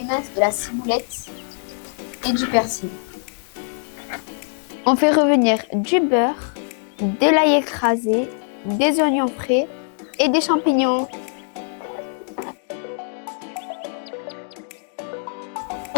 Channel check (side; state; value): right; silent; 64 dB below the other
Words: de la ciboulette et du persil. On fait revenir du beurre, de l'ail écrasé, des oignons frais et des champignons.